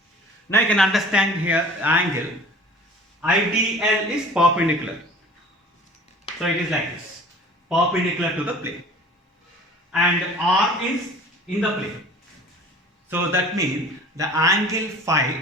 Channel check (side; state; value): both; normal; correlation 0.45